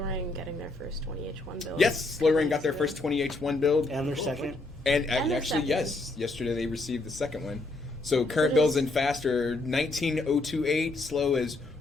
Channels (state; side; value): quieter; right; 3.1 dB